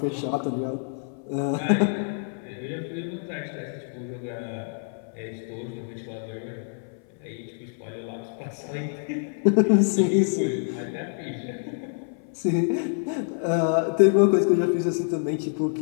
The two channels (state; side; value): silent; right; 57 dB below the other